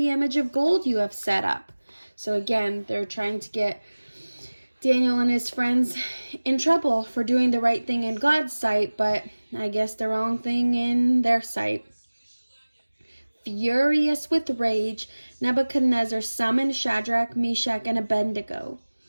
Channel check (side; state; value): both; inverted; correlation -1.00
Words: image of gold you have set up." So again, they're trying to get Daniel and his friends in trouble for doing the right thing in God's sight, but I guess the wrong thing in their sight. Furious with rage, Nebuchadnezzar summoned Shadrach, Meshach, and Abednego.